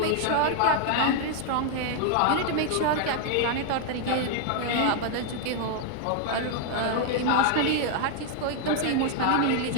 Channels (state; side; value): different; both; correlation 0.00